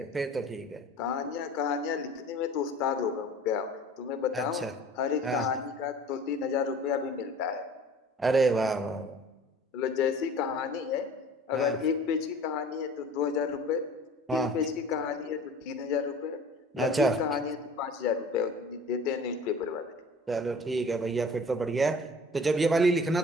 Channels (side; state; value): both; normal; correlation 0.44